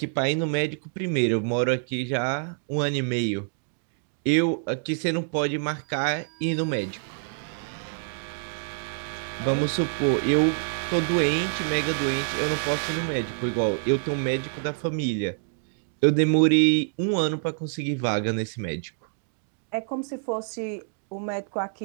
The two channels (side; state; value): left; silent; digital silence